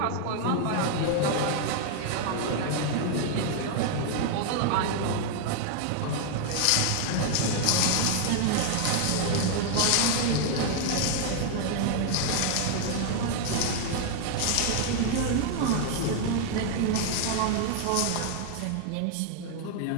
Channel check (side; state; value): both; different; correlation 0.00